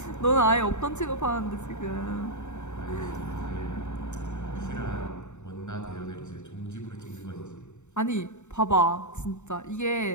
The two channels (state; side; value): late; right; 0.84 ms